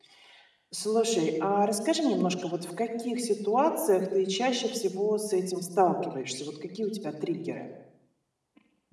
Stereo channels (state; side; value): identical; both; correlation 1.00